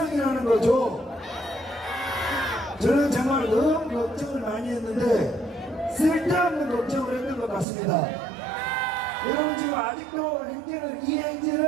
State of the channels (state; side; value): drops out; left; at 7.7 s